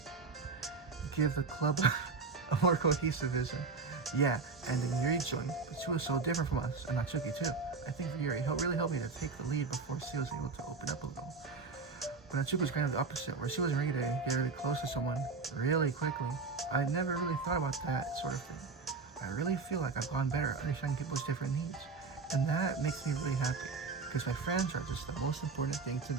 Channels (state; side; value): quieter; left; 4.5 dB